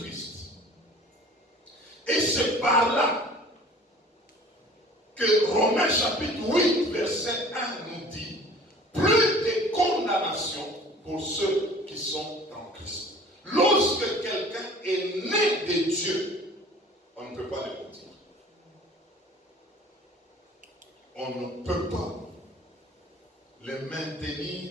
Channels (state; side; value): normal; both; correlation 0.47